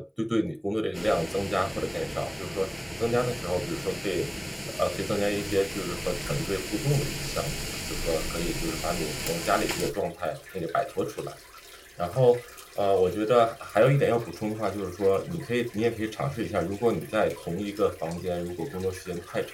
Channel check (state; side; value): identical; both; correlation 1.00